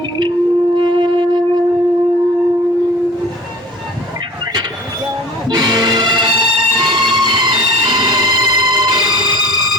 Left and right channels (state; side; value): normal; both; correlation 0.44